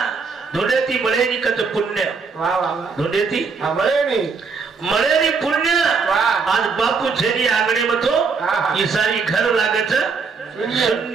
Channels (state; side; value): quieter; left; 5.0 dB